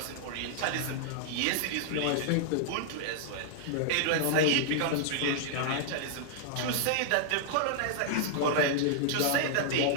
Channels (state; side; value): different; both; correlation -0.01